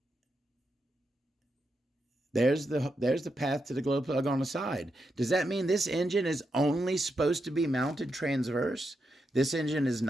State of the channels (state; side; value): normal; both; correlation 0.84